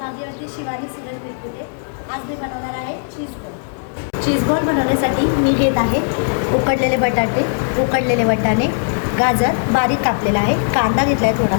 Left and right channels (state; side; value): silent; right; digital silence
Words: शिवानी सिरल बिरकुटे. आज मी बनवणार आहे चीज बॉल. चीज बॉल बनवण्यासाठी मी घेत आहे उकडलेले बटाटे, उकडलेले वाटाणे, गाजर बारीक कापलेला आहे, कांदा घेतला आहे